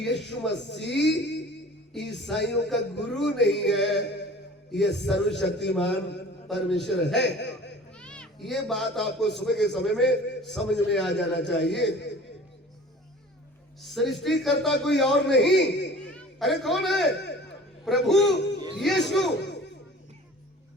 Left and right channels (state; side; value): normal; both; correlation 0.45